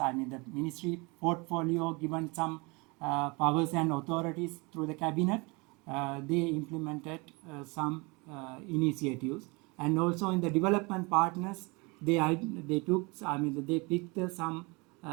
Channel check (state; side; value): quieter; left; 27.6 dB